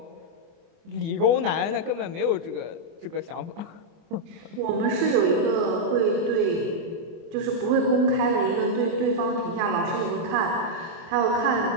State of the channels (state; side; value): late; left; 24 ms